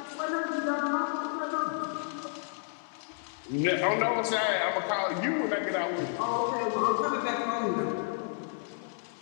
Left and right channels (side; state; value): right; silent; digital silence